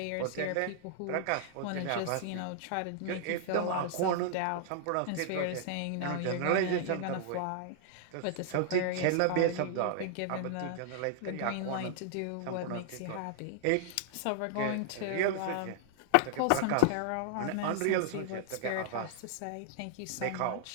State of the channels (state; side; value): different; both; correlation -0.01